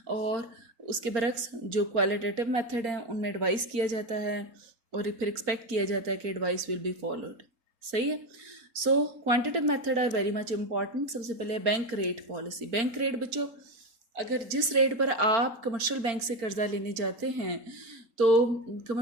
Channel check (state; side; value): late; left; 4.4 ms